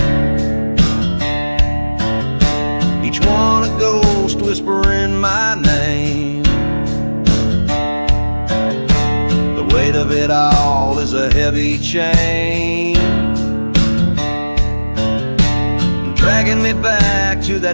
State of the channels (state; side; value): inverted; both; correlation -1.00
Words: Each one a ghost whispering my name. The weight of it all is a heavy chain, dragging me back to